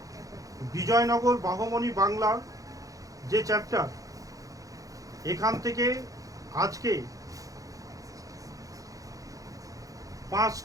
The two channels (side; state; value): left; late; 0.17 ms